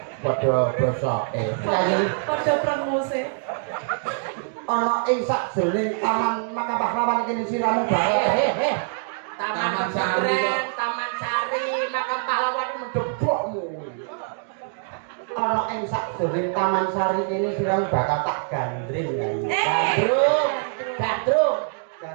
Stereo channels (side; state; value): left; silent; digital silence